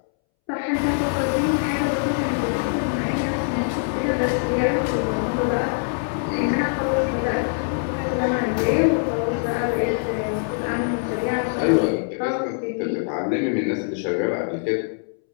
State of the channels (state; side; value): silent; right; 63 dB below the other